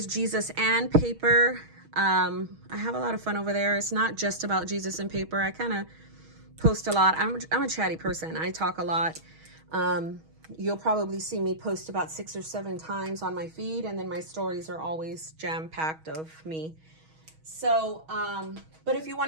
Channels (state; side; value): late; left; 6.3 ms